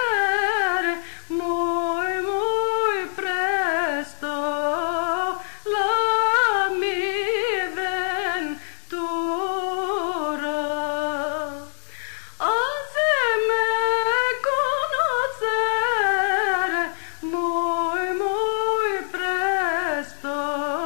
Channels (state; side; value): silent; right; digital silence